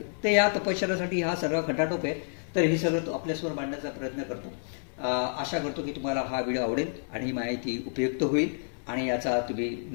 तर या तपश्चर्यासाठी हा सर्व खटाटोप आहे. तर हे सगळं आपल्यासमोर मांडण्याचा प्रयत्न करतो. आशा करतो की तुम्हाला हा व्हिडिओ आवडेल आणि ही माहिती उपयुक्त होईल आणि याचा तुम्ही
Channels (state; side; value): silent; right; 58 dB below the other